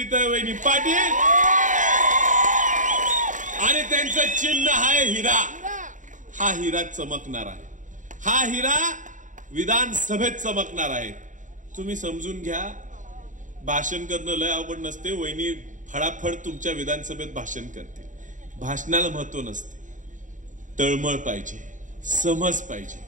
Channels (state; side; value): late; left; 0.37 ms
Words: पाटील आणि त्यांचं चिन्ह आहे हिरा. हा हिरा चमकणार आहे, हा हिरा विधानसभेत चमकणार आहे. तुम्ही समजून घ्या, भाषण करणं लय अवघड नसते. वहिनी फडाफड तुमच्या विधानसभेत भाषण करते. भाषणाला महत्व नसते, तळमळ पाहिजे, समज पाहिजे,